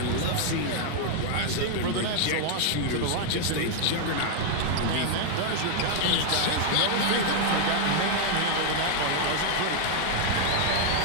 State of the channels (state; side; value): different; both; correlation 0.00